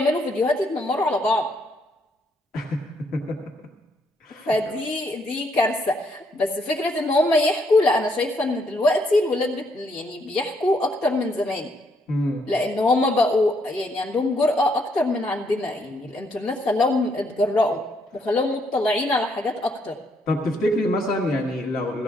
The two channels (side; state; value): both; normal; correlation 0.73